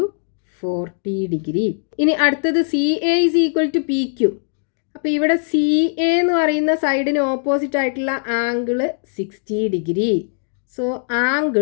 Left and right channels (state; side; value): silent; right; digital silence